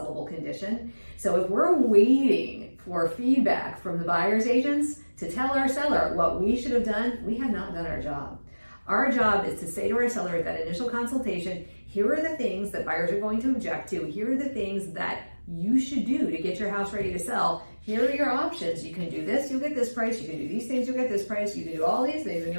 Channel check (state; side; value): inverted; both; correlation -1.00